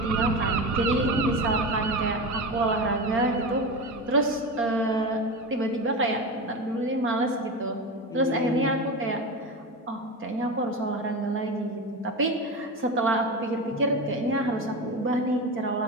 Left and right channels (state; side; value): normal; both; correlation 0.23